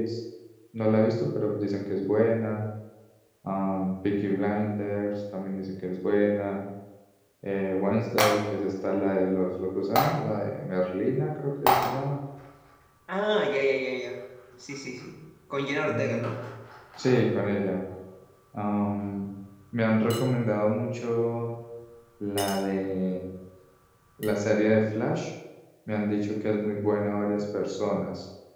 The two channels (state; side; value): identical; both; correlation 1.00